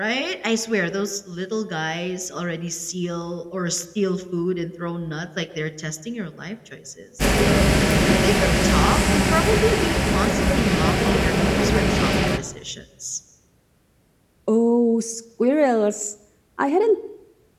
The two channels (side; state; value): both; identical; correlation 1.00